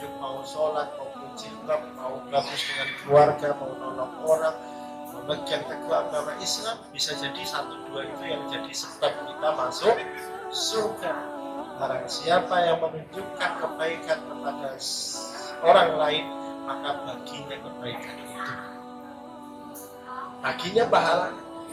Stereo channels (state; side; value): identical; both; correlation 1.00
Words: mau sholat, mau jilbab, mau bagus dengan keluarga, mau nolong orang, memegang teguh agama Islam, bisa jadi 1-2 itu yang jadi sebab kita masuk surga. Barang siapa yang menunjukkan kebaikan kepada orang lain, maka baginya kebaikan itu, baginya pahalanya.